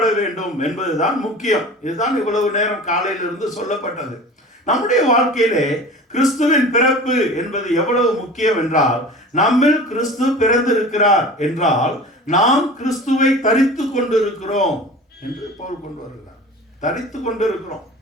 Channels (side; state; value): both; normal; correlation 0.38